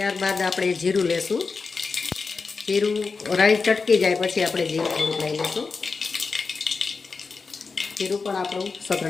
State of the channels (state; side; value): quieter; right; 4.6 dB